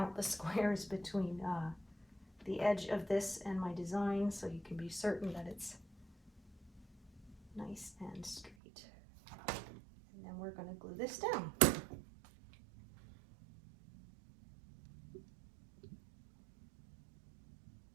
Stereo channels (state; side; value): drops out; left; at 8.6 s